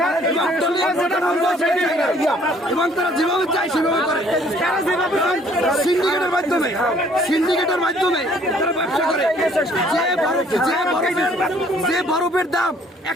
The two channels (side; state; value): both; normal; correlation 0.60